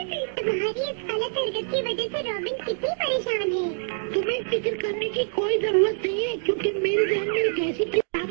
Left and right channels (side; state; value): left; silent; digital silence